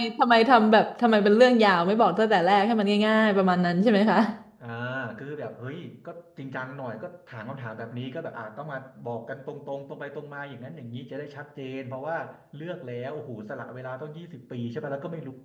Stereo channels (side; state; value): both; identical; correlation 1.00